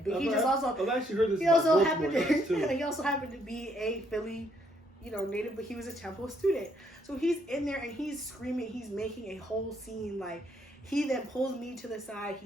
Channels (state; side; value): normal; both; correlation 0.71